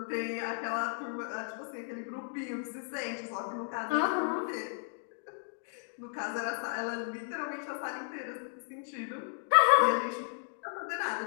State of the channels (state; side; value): silent; right; digital silence